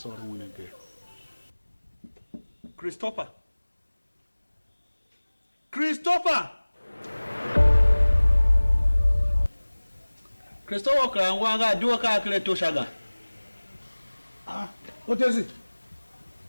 her win again. Christopher! Christopher! Christopher, Wanga, do a calculate to Shaga. Ah, what is it?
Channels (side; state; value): both; inverted; correlation -1.00